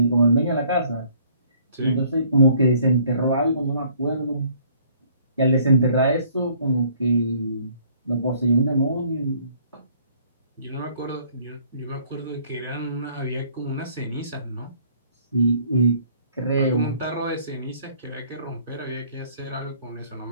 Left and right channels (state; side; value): inverted; both; correlation -0.59